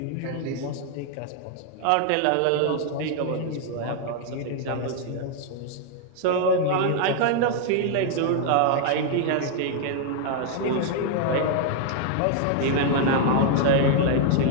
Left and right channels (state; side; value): different; both; correlation 0.00